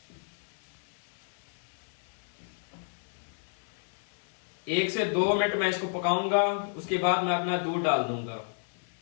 एक से 2 मिनट मैं इसको पकाऊंगा, उसके बाद मैं अपना दूध डाल दूंगा।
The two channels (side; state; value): right; silent; 57 dB below the other